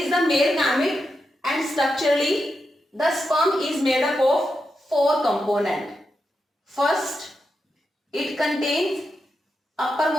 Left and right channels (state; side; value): normal; both; correlation 0.87